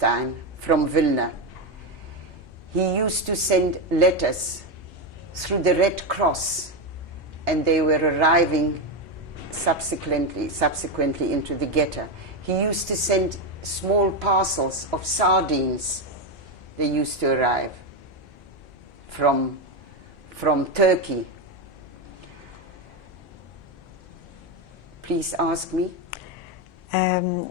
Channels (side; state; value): both; normal; correlation 0.10